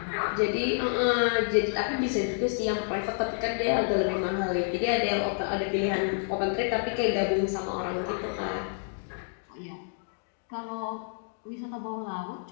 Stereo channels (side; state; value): right; silent; digital silence